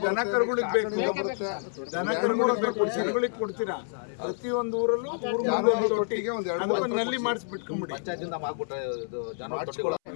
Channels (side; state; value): right; silent; 59 dB below the other